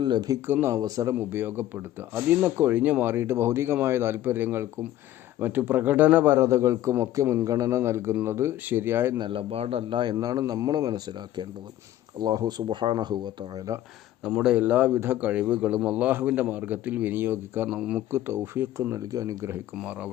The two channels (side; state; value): right; quieter; 13.4 dB